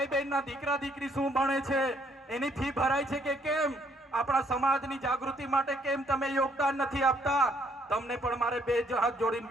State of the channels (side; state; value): both; normal; correlation 0.67